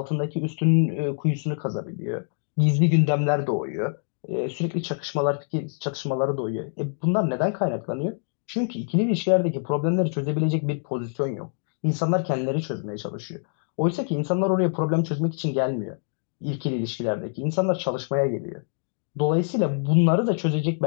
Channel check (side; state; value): right; silent; digital silence